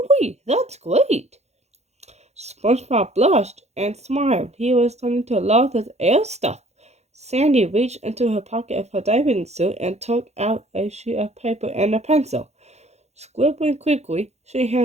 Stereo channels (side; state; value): left; late; 0.32 ms